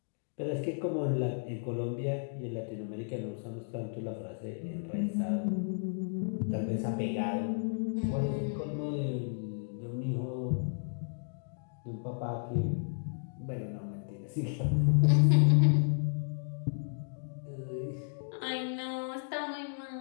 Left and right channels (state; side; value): silent; right; digital silence